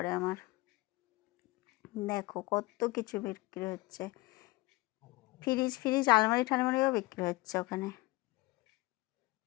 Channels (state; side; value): quieter; right; 21.8 dB